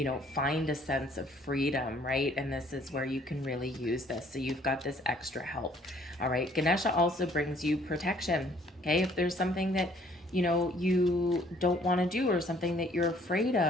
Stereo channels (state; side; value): normal; both; correlation 0.60